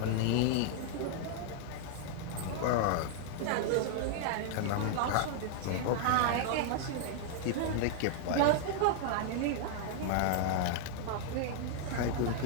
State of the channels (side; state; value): both; different; correlation -0.01